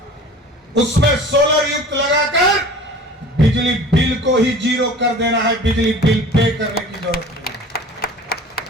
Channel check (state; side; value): normal; both; correlation 0.42